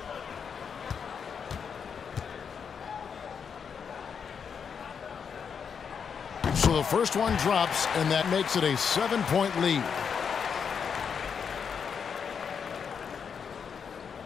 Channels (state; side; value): quieter; right; 6.7 dB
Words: So the first one drops, and that makes it a 7-point lead.